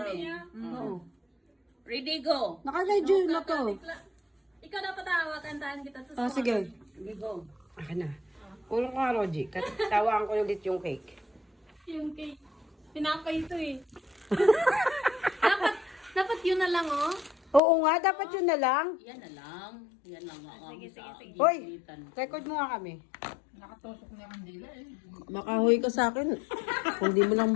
niya. Oo. Ready, go. Naka-radio na to. Ikaw dapat tawa, kantahan kita sa Sige. Okay, go. Akin na. Ulong ka, Roji. Tawaan ko ulit yung cake. Yung cake. Tinapay ito eh. dapat yun na lang oh. Oo nga, dapat yun na lang. Yan na lang. Yan lang nga. Sige, sige. Hoy, record mo nga kami. Nakatusok na yung dila eh. Makahoy ka sa akin. Kung di mo lang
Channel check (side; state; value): right; drops out; at 17.6 s